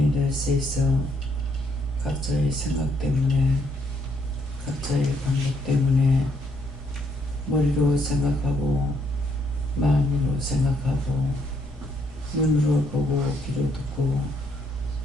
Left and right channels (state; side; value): normal; both; correlation 0.72